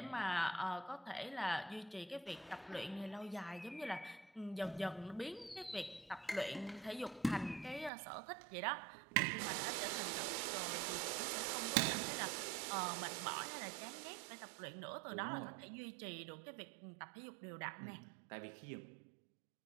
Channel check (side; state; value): left; drops out; at 7.9 s